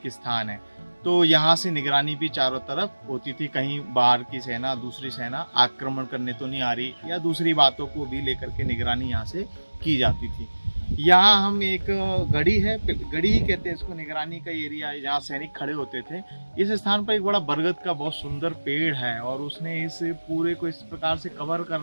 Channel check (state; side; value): inverted; both; correlation -1.00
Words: स्थान है। तो यहाँ से निगरानी भी चारों तरफ होती थी, कहीं बाहर की सेना, दूसरी सेना आक्रमण करने तो नहीं आ रही, या दूसरी बातों को भी लेकर के निगरानी यहाँ से की जाती थी। यहाँ हम एक गढ़ी है, गढ़ी ही कहते हैं इसको, निगरानी का एरिया है जहाँ सैनिक खड़े होते थे। इस स्थान पर एक बड़ा बरगद का बहुत सुंदर पेड़ है और उसने इस पूरे को इस प्रकार से कवर कर